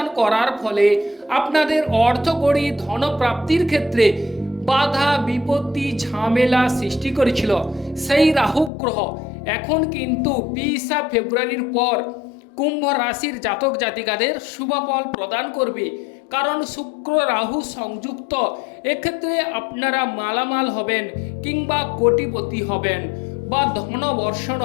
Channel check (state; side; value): drops out; right; at 8.7 s